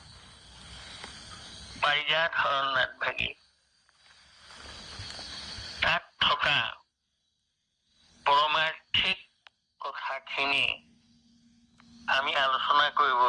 পাৰিজাত হৰণনাথ ভাগী তাত থকা পৰমাৰ্থিক কথাখিনি আমি আলোচনা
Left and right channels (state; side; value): identical; both; correlation 1.00